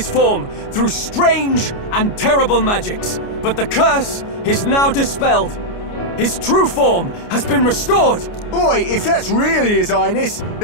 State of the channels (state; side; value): late; right; 29 ms